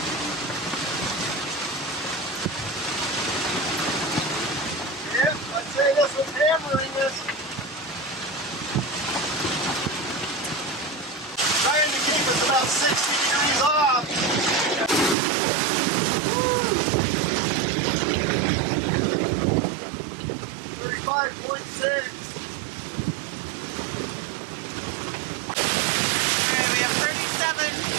Yep, I'd say this was hammering us. Trying to keep us about 60 degrees off. Woo! 35.6. We have 37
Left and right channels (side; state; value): left; drops out; at 15.2 s